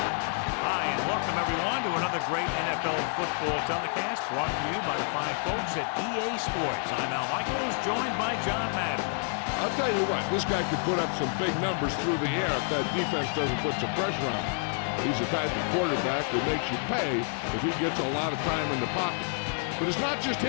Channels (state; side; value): silent; right; 55 dB below the other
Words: Hi, and welcome everyone to another great NFL football telecast brought to you by the fine folks at EA Sports. I'm Al Michaels, joined by John Madden. I'll tell you what, this guy could put up some big numbers through the air if that defense doesn't put some pressure on him. He's the type of quarterback that makes you pay if he gets a lot of time in the pocket. But it's not just